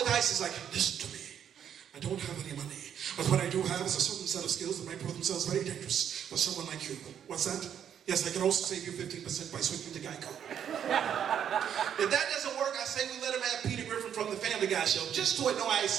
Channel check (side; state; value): left; quieter; 8.9 dB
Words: ISIS like, listen to me. I don't have any money. But what I do have is a certain set of skills that may prove themselves very dangerous for someone like you. What's that? Yes, I can also save you 15% by switching to Geico. If that doesn't work, I say we let him have Peter Griffin from the Family Guy show, just to annoy